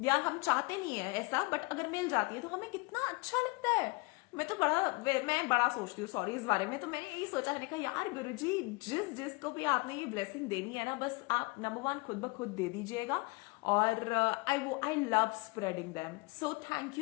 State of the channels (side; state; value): right; quieter; 26.8 dB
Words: या हम चाहते नहीं है ऐसा, बट अगर मिल जाती है तो हमें कितना अच्छा लगता है। मैं बड़ा सोचती हूँ सॉरी इस बारे में। तो मैंने यही सोचा, मैंने कहा यार गुरुजी जिसको भी आपने ये ब्लेसिंग देनी है ना, बस आप नंबर 1 खुद ब खुद दे दीजिएगा, और I love spreading them. So thank